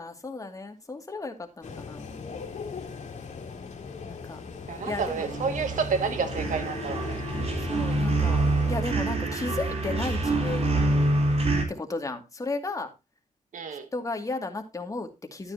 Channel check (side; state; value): both; normal; correlation 0.66